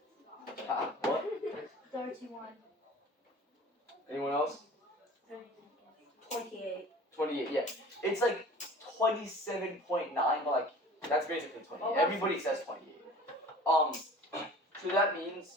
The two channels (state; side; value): normal; both; correlation 0.44